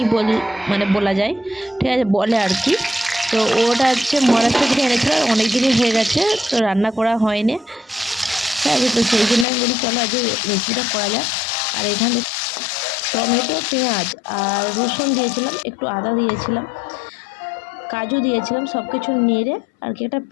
বলা যায়, ঠিক আছে, বলে আর কি। তো ওটা হচ্ছে মহারাষ্ট্র থেকে এনেছিল, অনেক দিনই হয়ে গেছে, তো রান্না করা হয়নি, ঠিক আছে। তো সেই জন্য আমি বলি চলো আজকে রেসিপিটা করা যাক। আর এখানে টমেটো, পেঁয়াজ আর রসুন দিয়েছিলাম, একটু আদা দিয়েছিলাম, কাজু দিয়েছিলাম, সব কিছু নেড়ে আর কি একটা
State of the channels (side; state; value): right; drops out; at 9.5 s